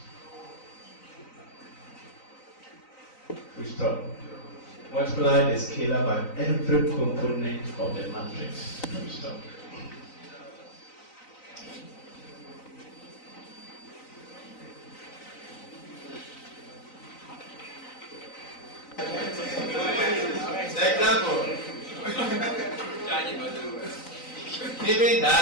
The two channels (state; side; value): late; right; 3.9 ms